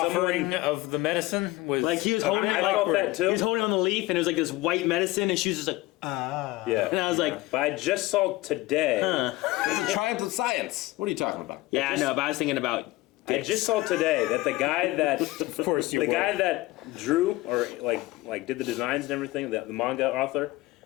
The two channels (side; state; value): right; quieter; 19.3 dB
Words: of the medicine was like he was holding I it, felt that too. he was holding on the leaf, and it was like this white medicine, and she was just like, Yeah. and I was like, But I just saw today. It's a triumph of science. What are you talking about? yeah, I know, but I was thinking about. I just saw today that the guy that Of course you the were. guy that drew or like did the designs and everything, the manga author,